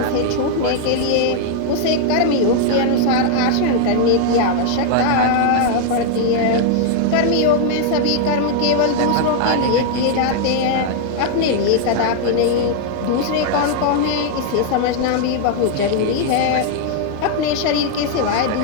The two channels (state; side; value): different; both; correlation 0.00